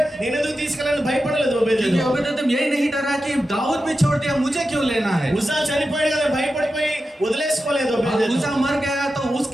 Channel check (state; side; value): normal; both; correlation 0.91